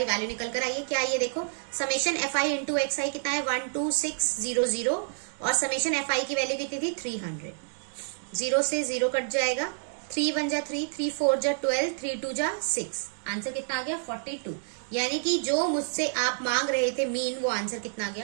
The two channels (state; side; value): silent; left; digital silence